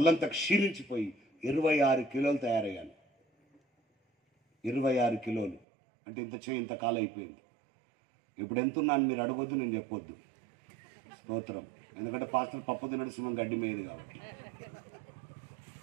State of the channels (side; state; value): left; drops out; at 5.6 s